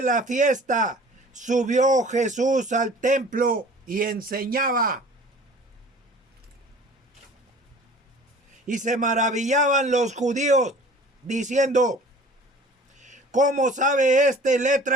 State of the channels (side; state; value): both; normal; correlation 0.47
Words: la fiesta subió Jesús al templo y enseñaba. Y se maravillaban los judíos, diciendo: ¿cómo sabe este